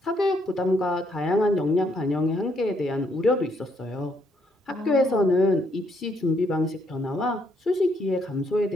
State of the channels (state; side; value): normal; both; correlation 0.72